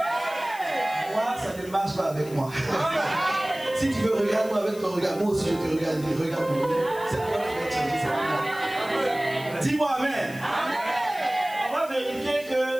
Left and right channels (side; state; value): left; noise; hiss, 18 dB below the sound